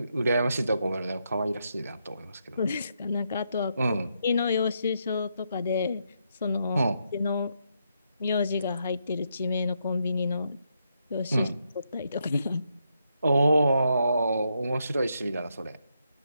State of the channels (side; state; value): both; inverted; correlation -0.79